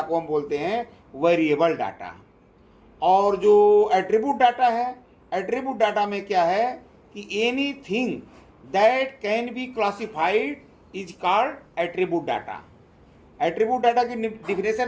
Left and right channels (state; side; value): identical; both; correlation 1.00